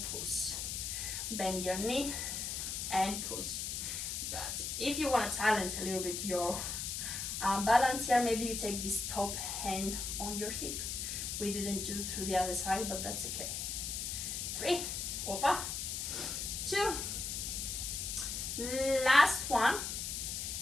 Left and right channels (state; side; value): noise; left; hiss, 3 dB below the sound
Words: push. Bend your knee and push. That's it. If you want to challenge a little bit your balance here, maybe you take this top hand on your hip. We didn't do through the other side, but that's okay. 3, opa, 2, last one.